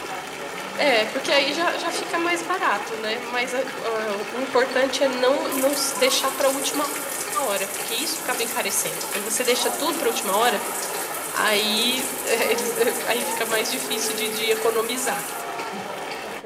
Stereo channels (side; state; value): both; identical; correlation 1.00